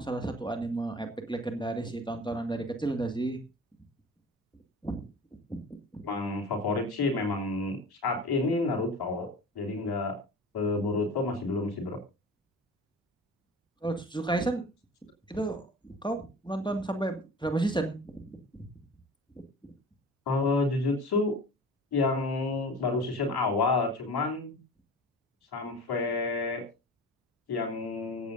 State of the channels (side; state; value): both; normal; correlation 0.38